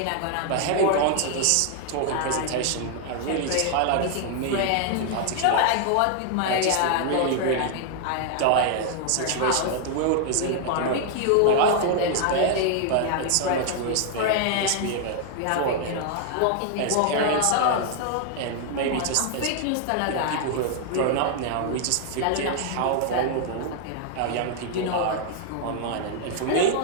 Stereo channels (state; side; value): different; both; correlation 0.00